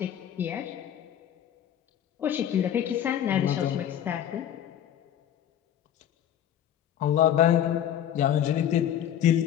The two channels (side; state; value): right; quieter; 10.4 dB